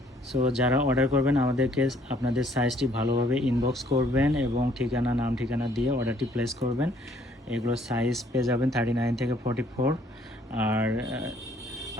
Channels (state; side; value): normal; both; correlation 0.63